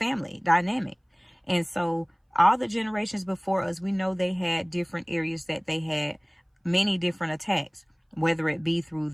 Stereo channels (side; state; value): both; identical; correlation 1.00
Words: dynamic. And so all the generations before us, we know they had different areas that they had many different attacks, whether it be through